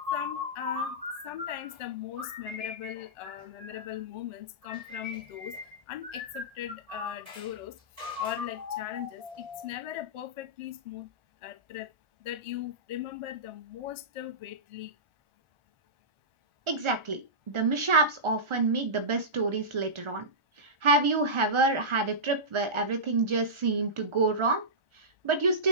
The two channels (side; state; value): left; late; 1.4 ms